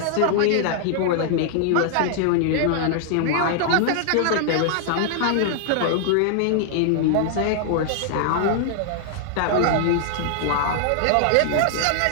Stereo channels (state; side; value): different; both; correlation 0.00